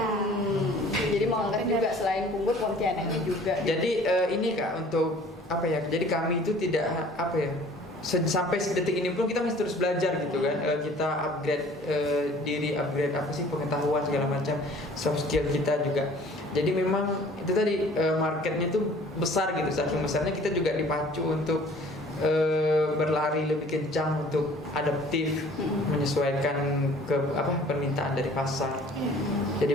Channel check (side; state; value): both; normal; correlation 0.51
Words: Jadi mengangkat juga selain Punggur, Pontianaknya juga. Jadi ini Kak, untuk apa ya? Jadi kami itu tidak apa ya? Sampai detik ini pun kita masih terus belajar gitu kan. Kita upgrade diri, upgrade apa sih pengetahuan segala macam, soft skill kita juga. Jadi memang itu tadi marketnya itu besar gitu. Saking besarnya kita juga dipacu untuk berlari lebih kencang untuk adaptif, menyesuaikan ke permintaan dari pasar.